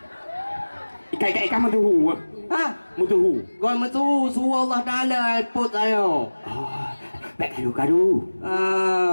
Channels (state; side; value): inverted; both; correlation -1.00